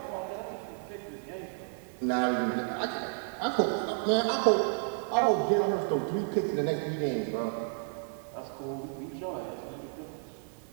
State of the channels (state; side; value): silent; left; 57 dB below the other